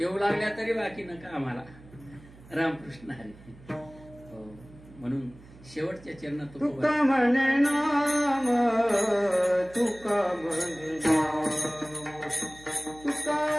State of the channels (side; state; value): right; noise; hum, 22 dB below the sound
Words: लागल्या तरी बाकी नका आम्हाला. रामकृष्ण आहे म्हणून शेवटच्या चरणात तुका म्हणे नाम, तुका म्हणे नाम,